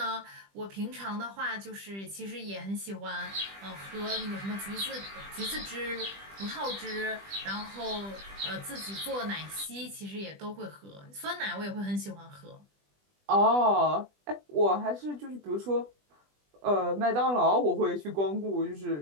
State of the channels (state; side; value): late; left; 20 ms